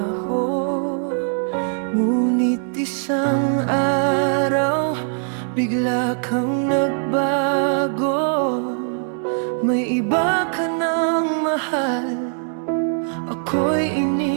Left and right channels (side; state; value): left; silent; 65 dB below the other